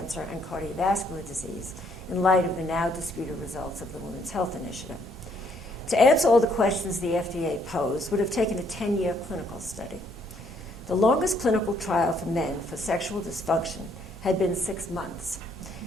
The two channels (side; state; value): both; normal; correlation 0.68